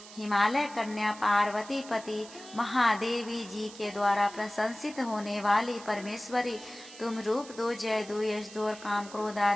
हिमालय कन्या पार्वती पति महादेवी जी के द्वारा प्रशंसित होने वाली परमेश्वरी, तुम रूप दो, जय दो, यश दो और काम क्रोध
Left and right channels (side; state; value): right; noise; hiss, 17 dB below the sound